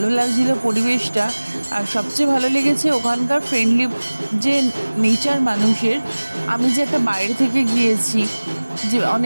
লাগছিল পরিবেশটা। আর সবচেয়ে ভালো লেগেছে ওখানকার ফ্রেন্ডলি যে নেচার মানুষের। আমি যে একটা বাইরে থেকে গিয়েছি, যে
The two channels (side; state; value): both; inverted; correlation -1.00